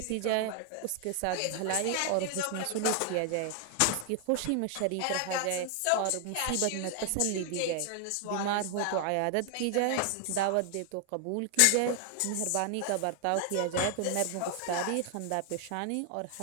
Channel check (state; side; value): different; both; correlation 0.00